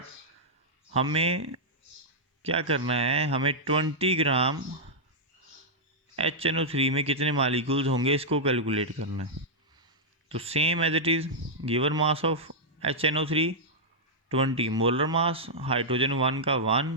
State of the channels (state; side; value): normal; both; correlation -0.08